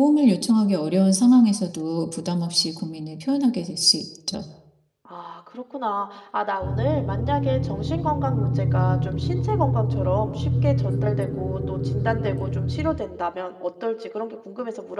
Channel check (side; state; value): both; identical; correlation 1.00